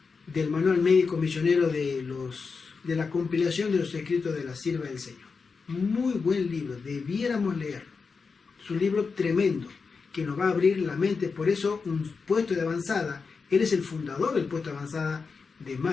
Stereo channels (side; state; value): right; quieter; 4.9 dB